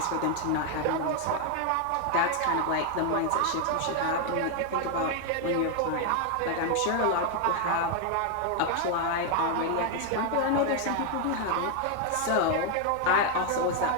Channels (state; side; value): different; both; correlation 0.00